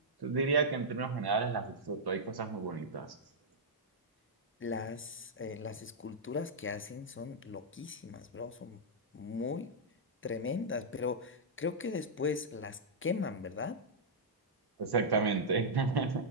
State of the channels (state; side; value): normal; both; correlation -0.08